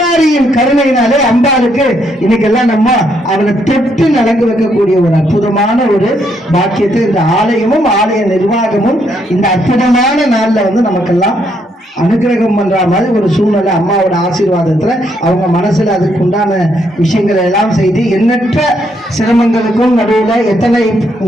கருணையினாலே அம்பாளுக்கு இன்னைக்கெல்லாம் நம்ம அவரை தொட்டு நலங்கு வைக்கக்கூடிய ஒரு அற்புதமான ஒரு பாக்கியத்தை இந்த ஆலயமும் ஆலய நிர்வாகமும் இந்த அற்புதமான நாள்ல நமக்கெல்லாம் அனுகிரகம் பண்ற மாதிரி ஒரு சூழ்நிலை அம்மாவோட ஆசீர்வாதத்துல அவங்க மனசுல அதுக்கு உண்டான விஷயங்களை எல்லாம் செய்து எண்ணற்ற சிரமங்களுக்கும் நடுவுல எத்தனை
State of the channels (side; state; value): both; normal; correlation 0.74